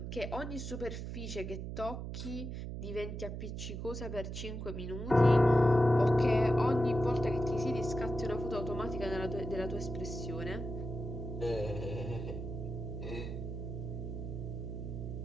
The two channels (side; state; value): right; noise; hum, 6 dB below the sound